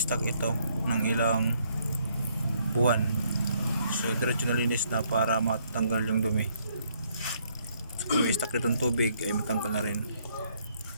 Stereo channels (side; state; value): both; inverted; correlation -0.69